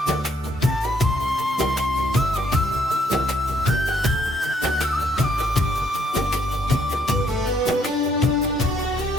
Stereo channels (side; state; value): both; normal; correlation 0.68